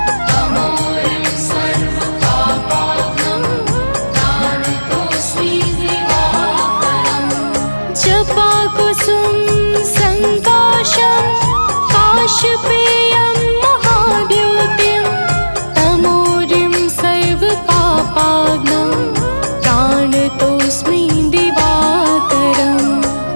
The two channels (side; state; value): both; inverted; correlation -1.00